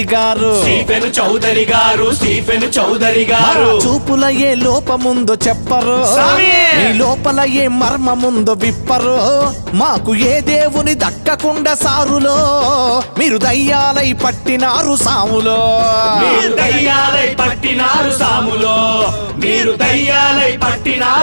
గారు, చూపుల ఏ లోపముందో చెప్పరు, ఈ లోపల ఏ మర్మముందో విప్పరు. మాకు ఏ దేవుని దక్కకుండా సారులో మీరు దయ్యాలై పట్టినారు సాములో, దయ్యాలై పట్టినారు సాములో, మీరు దయ్యాలై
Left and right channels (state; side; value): inverted; both; correlation -1.00